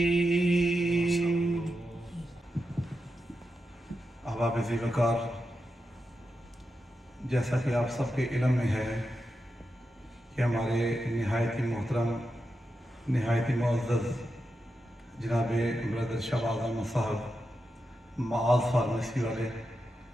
احباب ذی وقار، جیسا کہ آپ سب کے علم میں ہے کہ ہمارے نہایت ہی محترم، نہایت ہی معزز جناب برادر شہباز احمد صاحب معاذ فارمیسی والے،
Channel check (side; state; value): both; normal; correlation 0.88